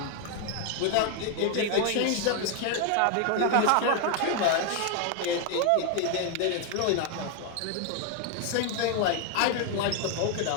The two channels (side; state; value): both; different; correlation 0.01